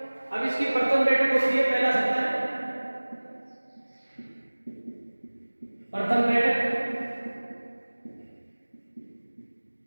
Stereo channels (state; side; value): inverted; both; correlation -1.00